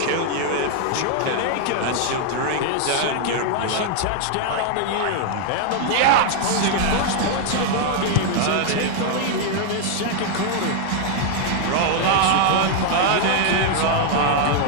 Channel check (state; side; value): different; both; correlation 0.00